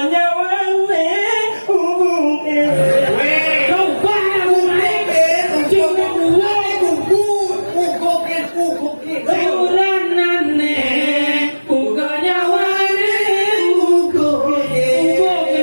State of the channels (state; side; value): inverted; both; correlation -1.00